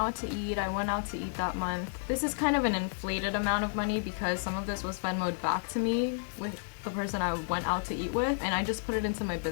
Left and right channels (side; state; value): right; silent; digital silence